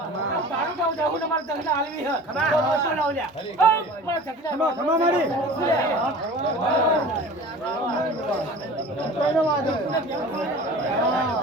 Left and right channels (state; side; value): normal; both; correlation 0.40